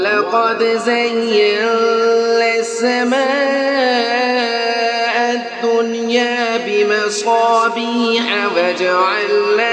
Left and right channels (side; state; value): both; identical; correlation 1.00